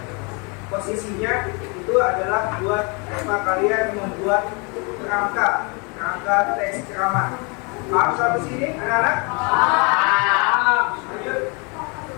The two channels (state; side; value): quieter; right; 32.0 dB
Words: posisinya, itu adalah buat apa kalian membuat kerangka teks ceramah. Paham sampai sini, anak-anak? Paham. Lanjut.